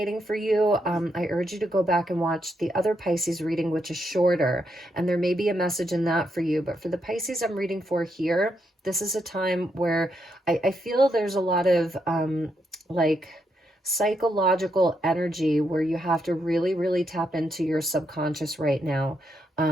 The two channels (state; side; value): normal; both; correlation 0.80